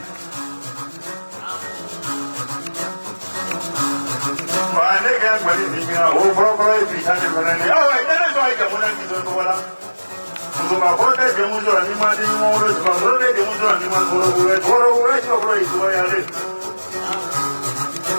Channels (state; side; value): inverted; both; correlation -1.00